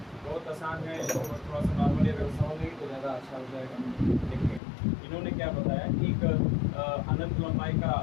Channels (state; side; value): drops out; right; at 4.6 s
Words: बहुत आसान है, थोड़ा सा नॉर्मली अगर समझेंगे तो ज़्यादा अच्छा हो जाएगा। देखिए, इन्होंने क्या बताया कि एक अनंत लंबाई का